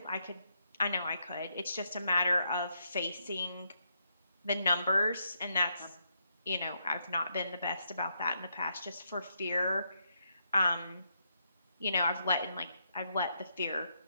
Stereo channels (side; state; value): both; inverted; correlation -0.79